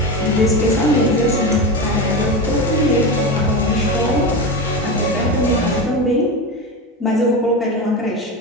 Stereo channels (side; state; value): both; normal; correlation 0.21